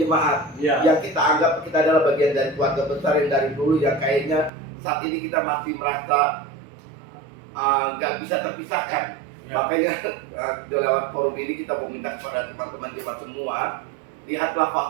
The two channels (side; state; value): left; drops out; at 4.5 s